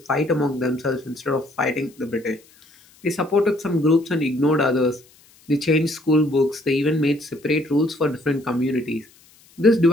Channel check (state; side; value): noise; left; hiss, 29 dB below the sound